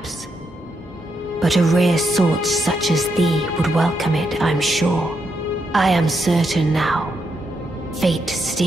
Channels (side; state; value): both; normal; correlation 0.81